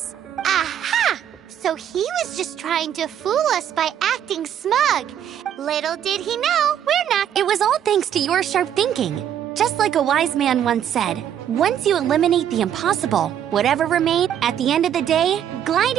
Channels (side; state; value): left; quieter; 9.8 dB